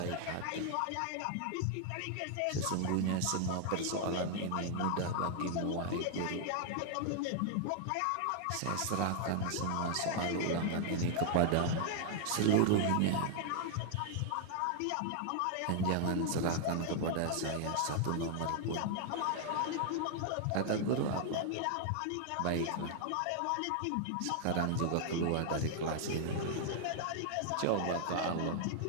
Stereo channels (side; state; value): both; different; correlation 0.00